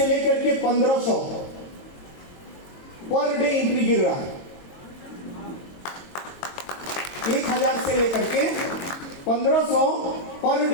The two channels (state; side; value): late; right; 22 ms